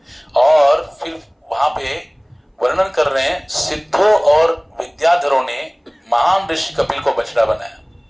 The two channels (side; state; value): both; identical; correlation 1.00